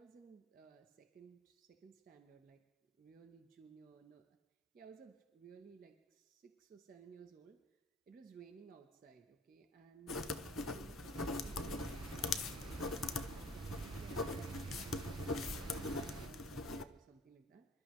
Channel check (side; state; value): both; normal; correlation 0.52